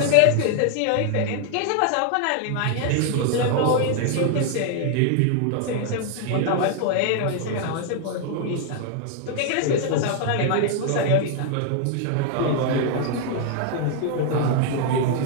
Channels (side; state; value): both; different; correlation 0.00